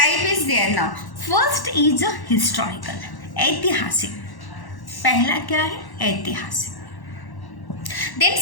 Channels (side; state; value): right; late; 1.1 ms